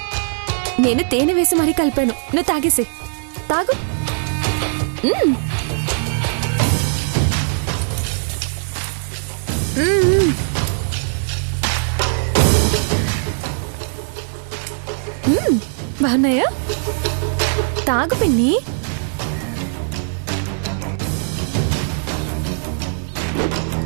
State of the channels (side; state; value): left; silent; digital silence